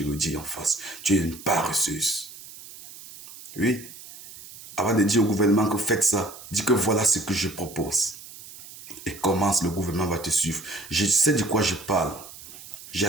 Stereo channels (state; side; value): noise; right; hiss, 16 dB below the sound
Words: le dis en face. Tu es une paresseuse. Oui. Avant de dire au gouvernement que faites ça, dis que voilà ce que je propose. Et commence, le gouvernement va te suivre. Je sais de quoi je parle. J'ai